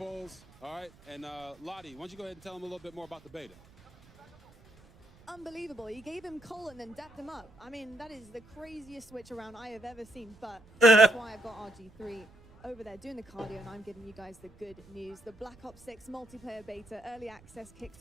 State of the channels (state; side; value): noise; right; rumble, 25 dB below the sound